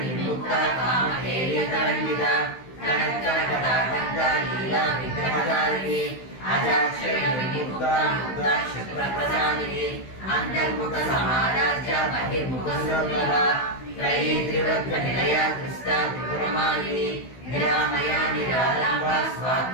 कामहेलितरङ्गिता कनत्कनकटाकन्ता लीला विग्रहधारिणी अजाक्षरविमुक्ता मुक्ता क्षिप्रप्रसादिनी अन्तर्मुखसमाराज्या बहिर्मुखसुलभा त्रयी त्रिवृत्तनिलया कृष्टा त्रिपुरमालिनी निरामया निरालम्बा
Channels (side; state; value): right; late; 16 ms